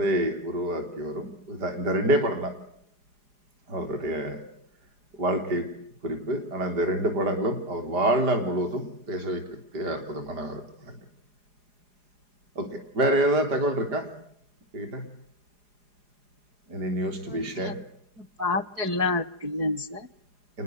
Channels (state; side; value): late; left; 4.9 ms